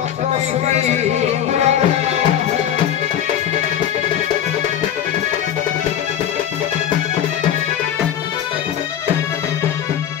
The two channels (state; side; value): quieter; right; 9.9 dB